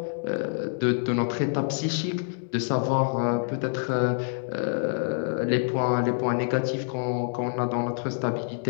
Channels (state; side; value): silent; right; digital silence